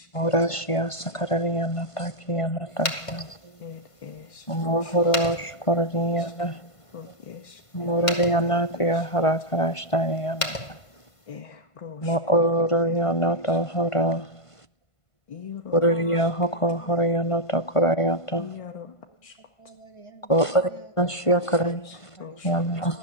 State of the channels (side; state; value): right; late; 1.5 ms